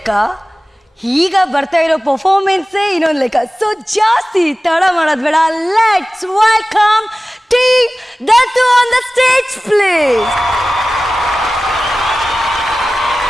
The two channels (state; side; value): normal; both; correlation 0.96